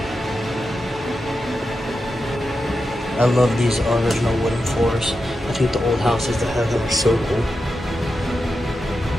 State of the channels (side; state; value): both; normal; correlation 0.89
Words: I love these original wooden floors. I think the old houses that have them are so cool.